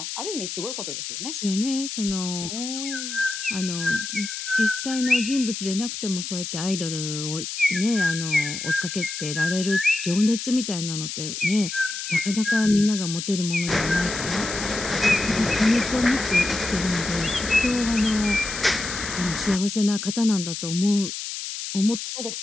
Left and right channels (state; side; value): noise; left; hiss, 6 dB below the sound